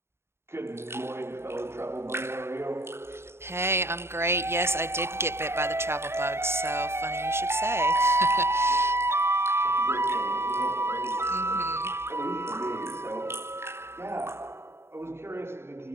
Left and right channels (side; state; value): left; late; 0.12 ms